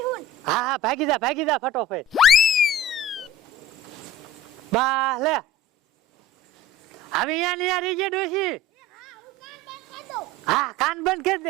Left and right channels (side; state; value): both; normal; correlation 0.40